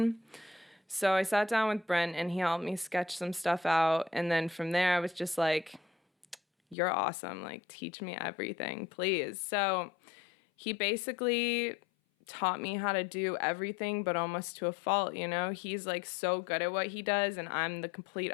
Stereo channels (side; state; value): right; drops out; at 6.8 s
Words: So I sat down with Brent, and he helped me sketch some stuff out. And then from there, I was just like, you're awesome. Like, teach me everything, please. So he basically taught me how to do everything, but almost to a fault, you know? He's like so good at what he does, and I'm the complete